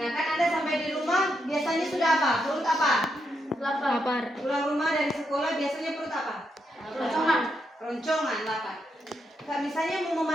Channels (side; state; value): both; normal; correlation 0.81